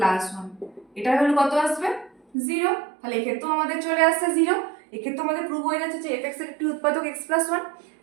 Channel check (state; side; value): drops out; left; at 2.2 s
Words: +1। এটা হলো কত আসবে? 0। তাহলে এক্ষেত্রেও আমাদের চলে আসছে 0। এক্ষেত্রে আমাদের প্রুভ হয়ে যাচ্ছে যে fx এর একটি উৎপাদক x + 1।